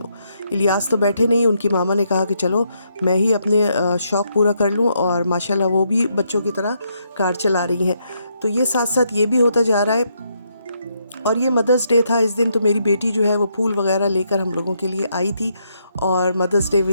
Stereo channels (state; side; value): inverted; both; correlation -0.77